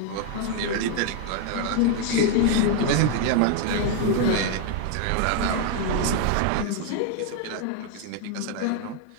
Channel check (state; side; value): different; both; correlation 0.00